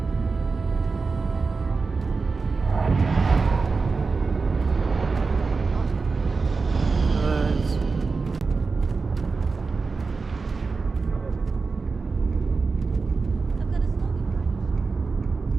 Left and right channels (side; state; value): left; quieter; 4.4 dB